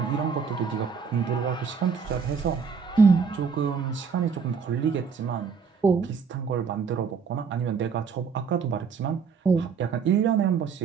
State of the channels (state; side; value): quieter; left; 5.9 dB